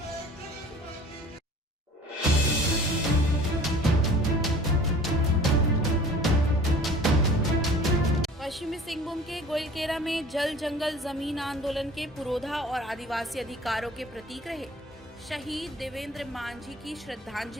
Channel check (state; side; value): normal; both; correlation 0.47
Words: जगत मांझी। पश्चिमी सिंहभूम के गोइलकेरा में जल जंगल जमीन आंदोलन के पुरोधा और आदिवासी अधिकारों के प्रतीक रहे शहीद देवेंद्र मांझी की